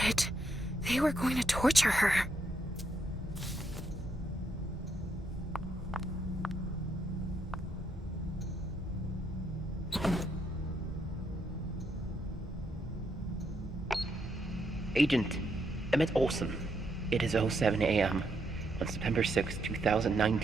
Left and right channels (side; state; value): both; normal; correlation 0.77